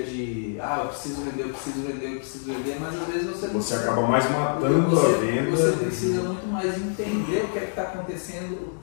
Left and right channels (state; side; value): silent; right; 61 dB below the other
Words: de eu preciso vender, mas às vezes você acaba mais matando a venda. Você precisa muito mais entender o que é que está acontecendo, o